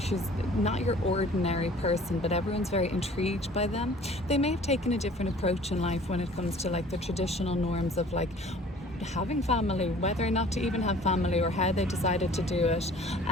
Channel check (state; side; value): normal; both; correlation 0.49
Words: She's not your ordinary person, but everyone's very intrigued by them. They may have taken a different approach in life when it comes to, like, the traditional norms of, like, having family, whether or not to even have family, or how they decided to do it.